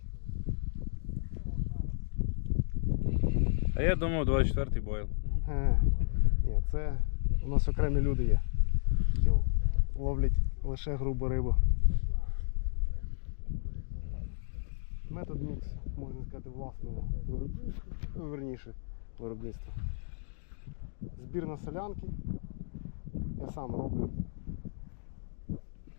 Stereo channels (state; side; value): silent; right; digital silence